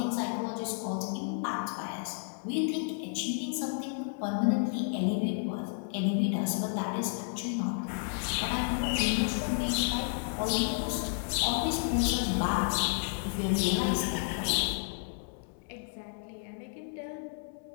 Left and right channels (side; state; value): right; silent; 57 dB below the other